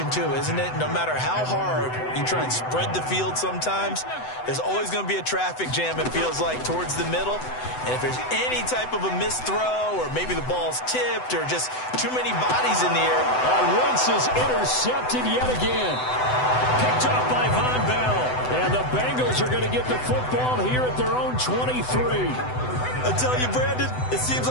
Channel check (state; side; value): late; right; 7.9 ms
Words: too, isn't it? No matter how hard you try and spread the field sometimes, there's always going to be a traffic jam, it feels like, towards the middle. And if there's any type of a missed throw or maybe the ball's tipped or just too many bodies in the air. Wentz is intercepted yet again. Picked up by Von Bell. And the Bengals are going to get the football here at their own 23. I tell you, Brandon, it seems